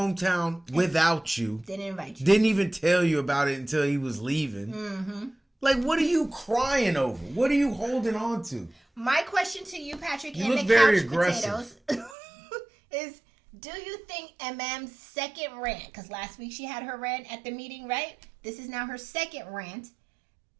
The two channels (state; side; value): drops out; left; at 12.2 s